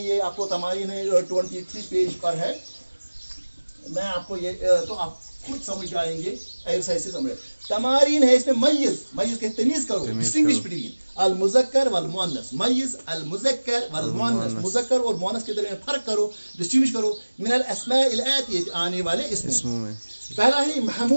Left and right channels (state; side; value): inverted; both; correlation -1.00